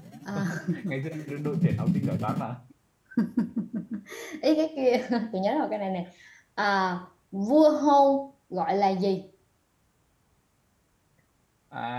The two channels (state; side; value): identical; both; correlation 1.00